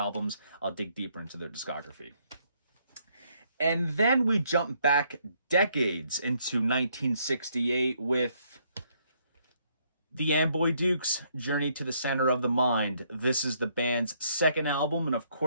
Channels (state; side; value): inverted; both; correlation -0.70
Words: I'll dig deeper into their discography. And then we jump back decades into 1968 with the Amboy Dukes, Journey to the Center of the Mind. This is the band's second album, and of